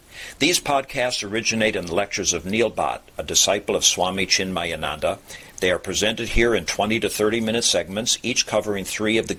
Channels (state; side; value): identical; both; correlation 1.00